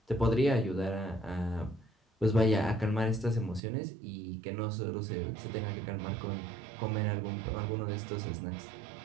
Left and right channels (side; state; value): left; drops out; at 3.6 s